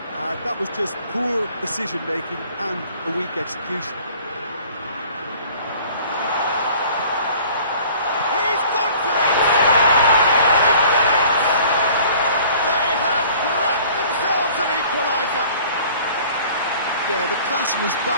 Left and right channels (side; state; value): both; inverted; correlation -0.50